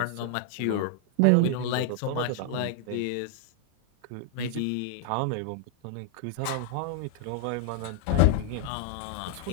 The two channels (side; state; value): both; different; correlation 0.00